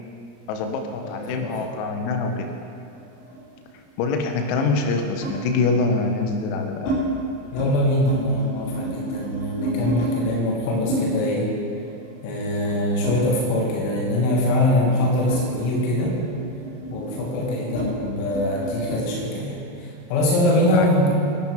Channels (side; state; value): right; late; 34 ms